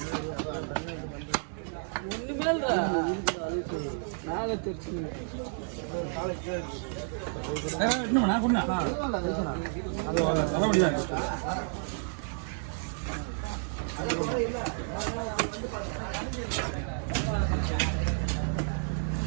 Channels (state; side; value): silent; left; 57 dB below the other